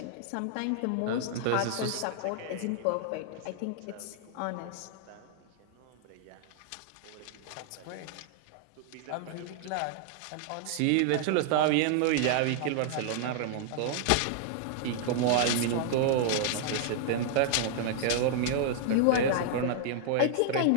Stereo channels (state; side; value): different; both; correlation -0.01